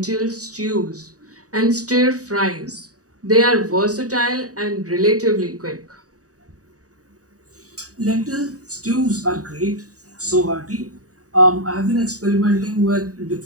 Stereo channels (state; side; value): late; left; 0.66 ms